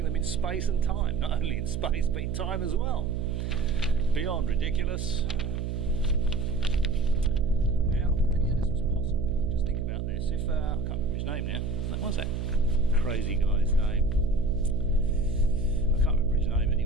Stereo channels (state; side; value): noise; right; hum, 3 dB below the sound